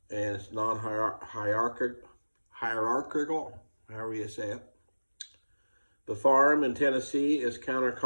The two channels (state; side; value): inverted; both; correlation -1.00